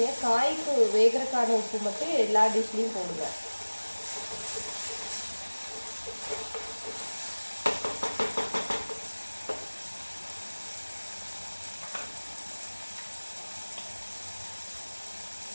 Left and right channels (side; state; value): both; inverted; correlation -1.00